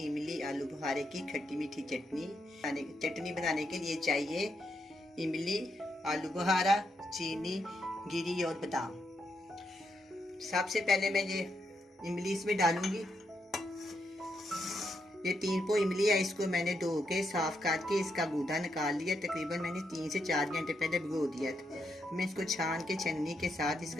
इमली आलू बुखारे की खट्टी मीठी चटनी। चटनी बनाने के लिए चाहिए इमली, आलू बुखारा, चीनी, गिरी और बादाम। सबसे पहले मैं ये इमली इसमें डालूंगी। ये 3 पो इमली है, इसको मैंने धो के साफ करके इसका गूदा निकाल लिया। तकरीबन मैंने 3 से 4 घंटे पहले भिगो दिया था। मैं इसको छान के छन्नी के साथ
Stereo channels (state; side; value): normal; both; correlation 0.80